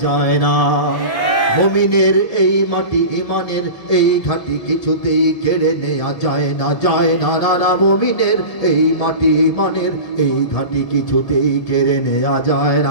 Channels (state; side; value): late; right; 1.7 ms